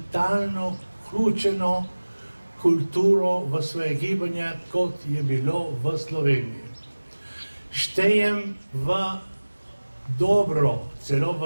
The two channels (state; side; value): inverted; both; correlation -1.00